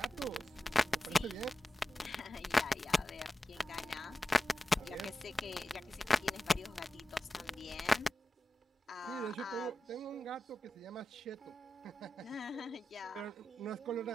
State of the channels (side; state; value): both; normal; correlation 0.93